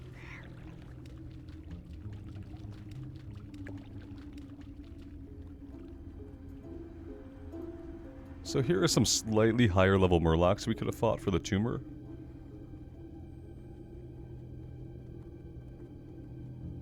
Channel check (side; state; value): both; identical; correlation 1.00